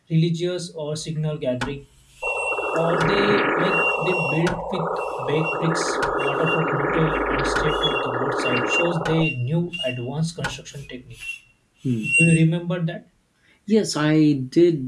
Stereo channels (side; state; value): both; identical; correlation 1.00